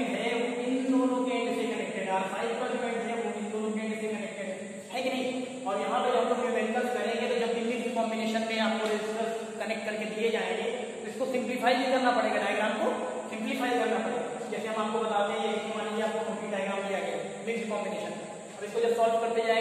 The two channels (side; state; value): both; identical; correlation 1.00